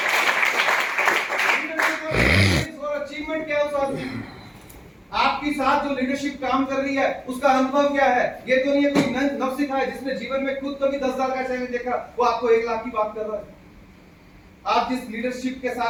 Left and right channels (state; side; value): identical; both; correlation 1.00